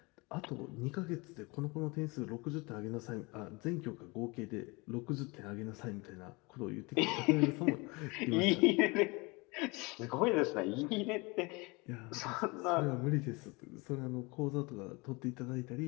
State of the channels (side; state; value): right; quieter; 26.4 dB